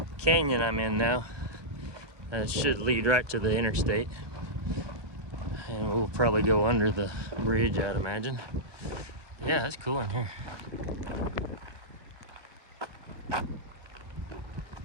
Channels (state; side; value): late; left; 1.2 ms